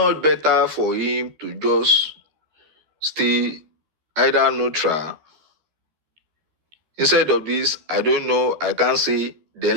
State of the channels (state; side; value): late; left; 13 ms